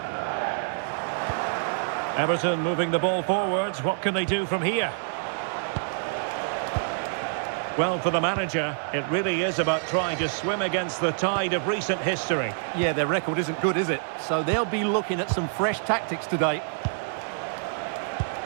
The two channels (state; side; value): silent; left; digital silence